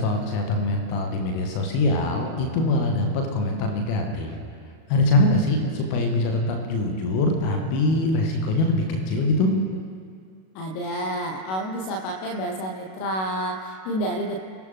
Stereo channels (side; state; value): right; late; 37 ms